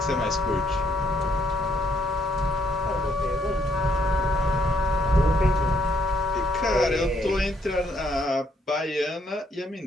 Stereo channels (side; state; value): both; normal; correlation 0.71